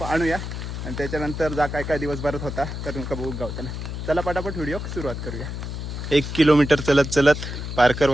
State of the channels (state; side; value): noise; left; hum, 6 dB below the sound